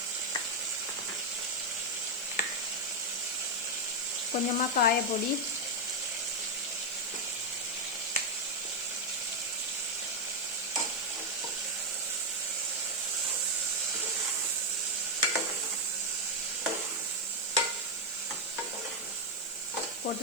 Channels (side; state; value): left; noise; hiss, 14 dB below the sound